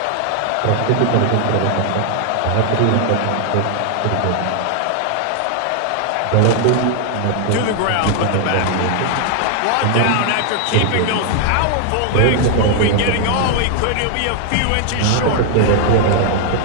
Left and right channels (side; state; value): both; different; correlation 0.00